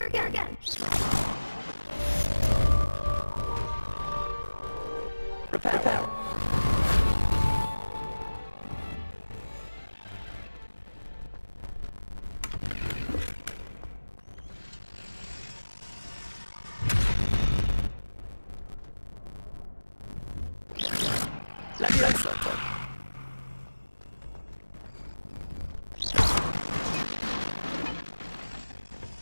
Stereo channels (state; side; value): inverted; both; correlation -1.00